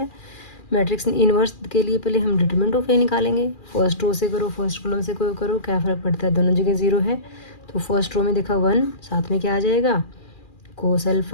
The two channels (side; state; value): right; late; 2.4 ms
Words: मैट्रिक्स इन्वर्स के लिए पहले हम डिटरमिनेंट ऑफ ए निकालेंगे। फर्स्ट रो से करो, फर्स्ट कॉलम से कोई करो, क्या फ़र्क पड़ता है, दोनों जगह 0 है। तो फर्स्ट रो में देखा 1, साथ में क्या आ जाएगा, cos